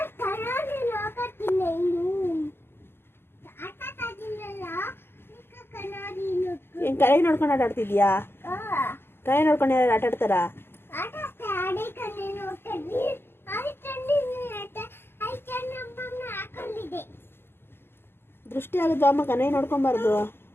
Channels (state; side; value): late; right; 0.11 ms